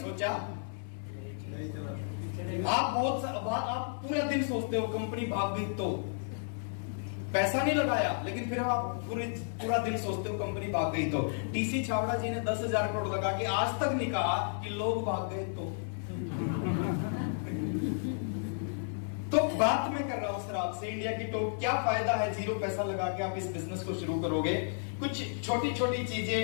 सोचा आप पूरा दिन सोचते हो कंपनी भाग गई तो पैसा नहीं लगाया, लेकिन फिर आप पूरा दिन सोचते हो कंपनी भाग गई तो। टीसी छावड़ा जी ने 10,000 करोड़ लगा के आज तक नहीं कहा कि लोग भाग गए तो बात मैं कर रहा हूं सर आपसे इंडिया की टॉप। क्या फायदा है जीरो पैसा लगा के आप इस बिजनेस को शुरू करोगे? कुछ छोटी छोटी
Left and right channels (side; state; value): right; silent; 56 dB below the other